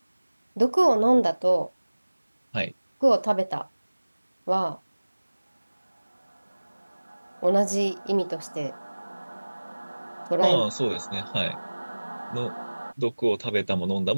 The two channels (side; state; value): both; inverted; correlation -1.00